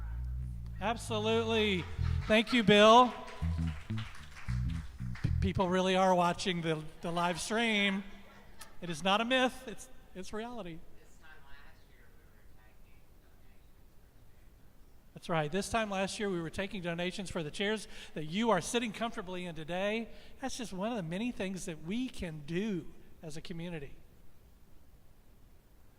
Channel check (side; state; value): both; identical; correlation 1.00